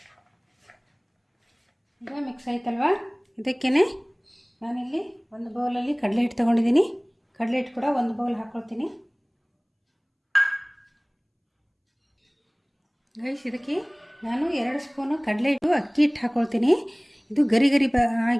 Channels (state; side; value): identical; both; correlation 1.00